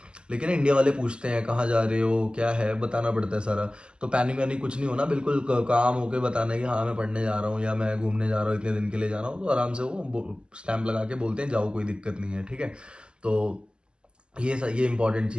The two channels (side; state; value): left; late; 0.050 ms